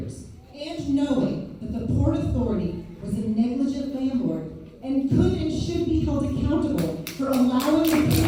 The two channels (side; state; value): both; identical; correlation 1.00